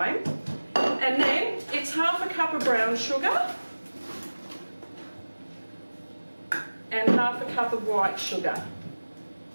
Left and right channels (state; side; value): inverted; both; correlation -1.00